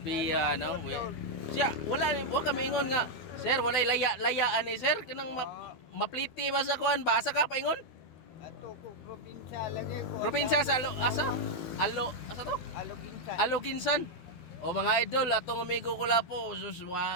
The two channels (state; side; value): late; right; 12 ms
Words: Biya no. Siya wala kami ingon nga. Sir, walay layaan ni sir kanang mapliti ba sa kuan ba? Asa ka paingon? Ato ko probinsya lagi ko. Probinsya sa asa? Asa to? Aloginsan. Aloginsan. O mga idol, atong amigo ko la po, sus